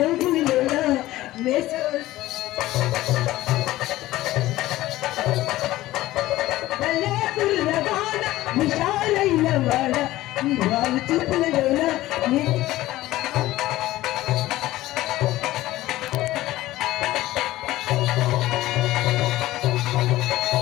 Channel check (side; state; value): right; quieter; 16.3 dB